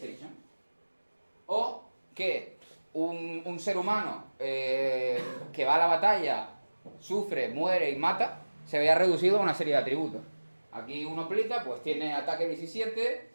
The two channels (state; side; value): inverted; both; correlation -1.00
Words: O que un ser humano que va a la batalla, sufre, muere y mata, se vea reducido a una serie de atributos. Aquí uno aplica, pues tiene ataque 17,